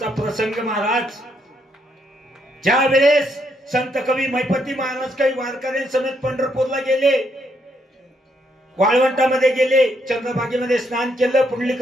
प्रसंग महाराज, ज्या वेळेस संत कवी मैपती महाराज काही वारकऱ्यांसमेत पंढरपूरला गेले, वाळवंटामध्ये गेले, चंद्रभागेमध्ये स्नान केलं,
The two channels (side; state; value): both; normal; correlation 0.75